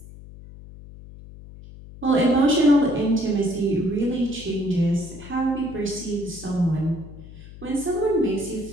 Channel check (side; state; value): left; noise; hum, 17 dB below the sound